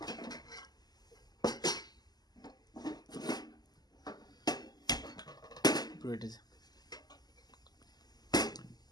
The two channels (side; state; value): right; late; 0.20 ms